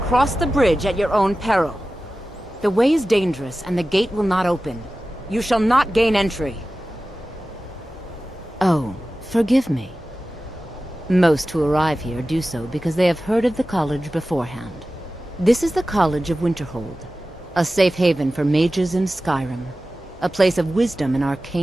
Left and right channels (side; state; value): both; normal; correlation 0.95